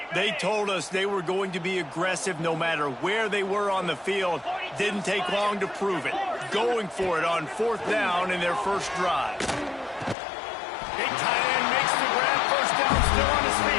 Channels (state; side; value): drops out; right; at 10.2 s